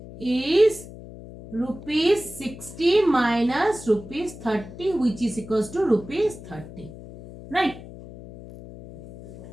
is rupees 60 minus rupees 30, which is equals to rupees 30. Right?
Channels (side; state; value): left; noise; hum, 15 dB below the sound